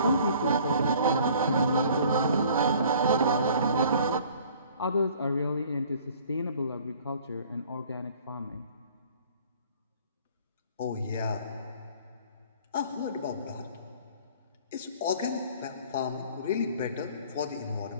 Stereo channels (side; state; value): both; inverted; correlation -0.53